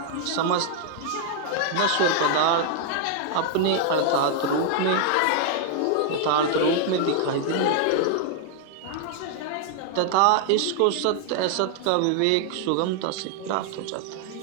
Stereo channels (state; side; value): different; both; correlation 0.00